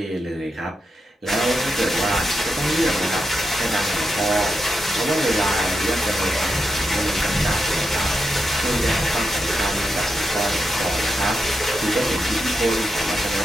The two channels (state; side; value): normal; both; correlation 0.85